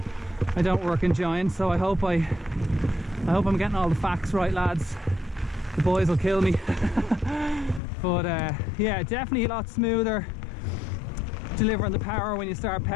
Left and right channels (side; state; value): right; drops out; at 7.8 s